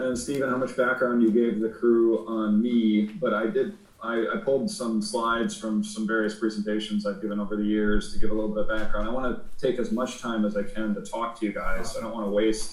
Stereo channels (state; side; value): identical; both; correlation 1.00